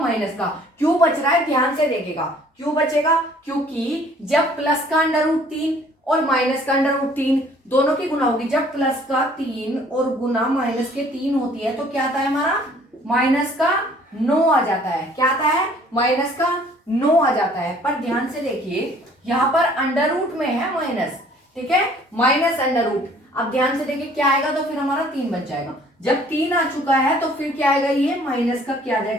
का। क्यों बच रहा है, ध्यान से देखेगा, क्यों बचेगा, क्योंकि जब प्लस का अंडर रूट 3 और माइनस का अंडर रूट 3 दोनों की गुना होगी, जब प्लस का 3 और गुना माइनस के 3 होती है तो क्या आता है हमारा, माइनस का 9 आ जाता है। क्या आता है, माइनस का 9 आ जाता है। पर ध्यान से देखिए, यहां पर अंडर रूट में है माइनस, ठीक है, माइनस अंडर रूट। अब ध्यान से देखिए क्या आएगा, तो फिर हमारा 3 बच जाएगा। जब 3 आ चुका है तो फिर क्या आएगा, ये माइनस का क्या आ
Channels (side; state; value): both; normal; correlation 0.56